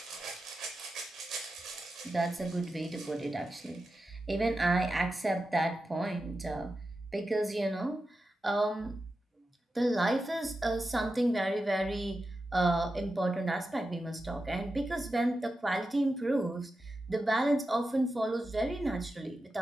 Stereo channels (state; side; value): normal; both; correlation 0.91